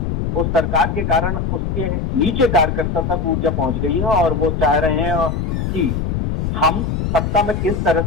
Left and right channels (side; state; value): left; noise; rumble, 1 dB below the sound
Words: उस सरकार के कारण उसके नीचे कार्यकर्ता तक ऊर्जा पहुंच गई है, और वो चाह रहे हैं कि हम सत्ता में किस तरह